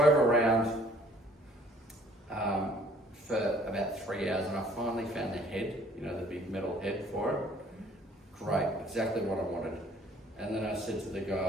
around for about 3 hours, and I finally found the head, the big metal head for it. Great, exactly what I wanted. And then I said to the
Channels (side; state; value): both; normal; correlation 0.58